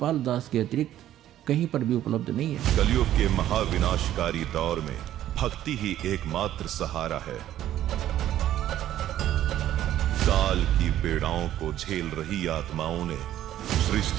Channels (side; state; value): left; quieter; 12.4 dB